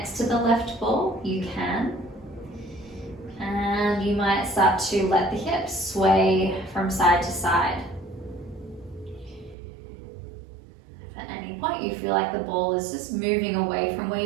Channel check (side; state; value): left; drops out; at 9.6 s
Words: to the left ball, you can. And you might start to let the hips sway from side to side. If at any point you feel like the ball is just moving away from where